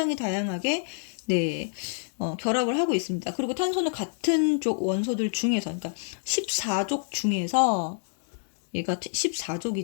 다양하게 네, 결합을 하고 있습니다. 그리고 탄소는 같은 쪽 원소들 중에서, 그러니까 14족 중에서 얘가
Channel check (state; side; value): silent; right; 60 dB below the other